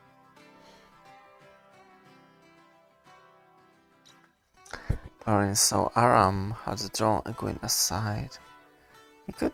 Perrin saw Aram had drawn Egwene aside. He could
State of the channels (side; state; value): both; identical; correlation 1.00